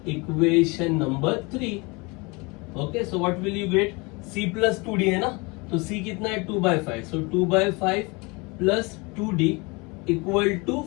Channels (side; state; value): right; quieter; 27.4 dB